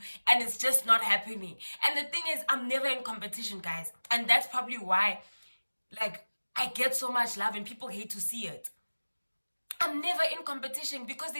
and it's just not happening. And the thing is, I'm never in competition, guys, and that's probably why, like, I get so much love and people hate to see it. I'm never in competition because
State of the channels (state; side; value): inverted; both; correlation -1.00